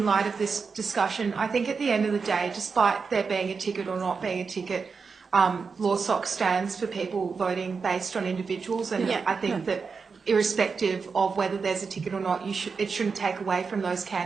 light of this discussion. I think at the end of the day, despite there being a ticket or not being a ticket, LawSoc stands for people voting based on individuals, and I think that irrespective of whether there's a ticket or not, it shouldn't take away from those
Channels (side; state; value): left; quieter; 5.1 dB